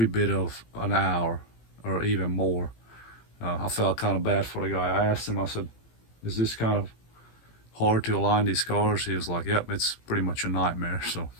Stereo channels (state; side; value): late; right; 18 ms